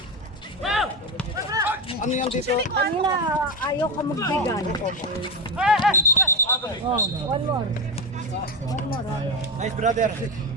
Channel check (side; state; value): both; normal; correlation 0.14